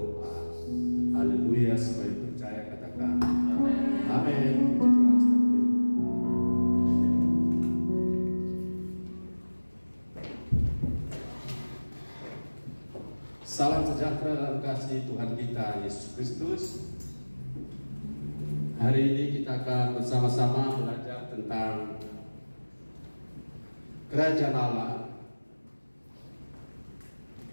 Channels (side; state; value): both; inverted; correlation -1.00